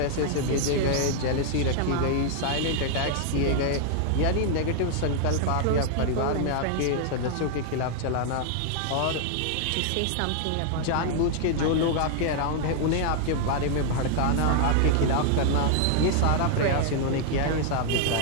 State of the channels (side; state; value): both; different; correlation 0.00